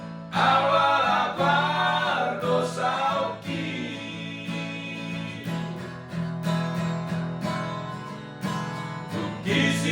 Awal apa dosa oki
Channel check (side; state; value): both; identical; correlation 1.00